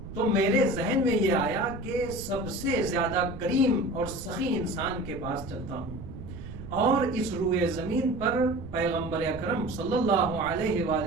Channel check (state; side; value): noise; right; rumble, 12 dB below the sound